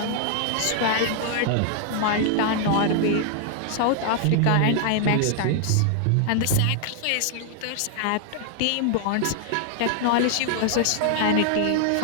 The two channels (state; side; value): different; both; correlation 0.00